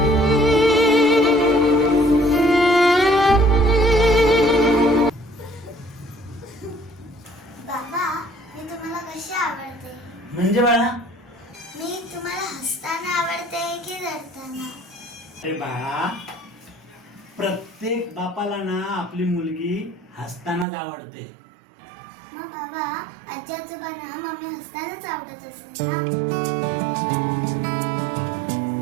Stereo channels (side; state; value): left; drops out; at 20.7 s